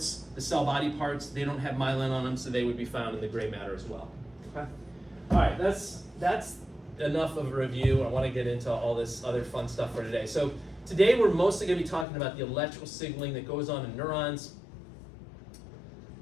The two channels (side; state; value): right; drops out; at 12.1 s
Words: the cell body parts, they don't have myelin on them, so they would be found in the gray matter as well. Okay. All right, that's enough of a review. I want to get into all this other fun stuff for today. So today we're mostly going to be talking about the electrical signaling that goes on in neurons.